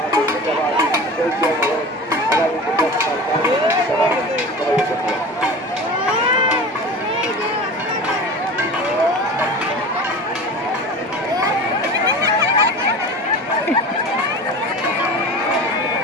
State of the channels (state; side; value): normal; both; correlation 0.34